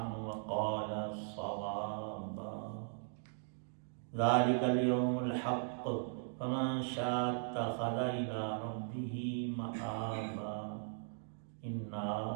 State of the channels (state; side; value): silent; left; digital silence